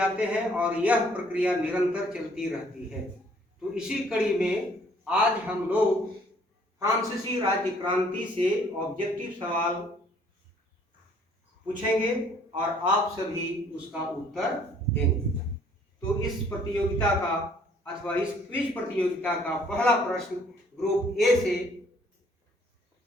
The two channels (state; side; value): normal; both; correlation 0.60